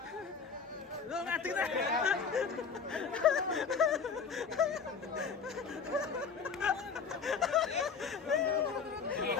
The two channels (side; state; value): right; quieter; 5.8 dB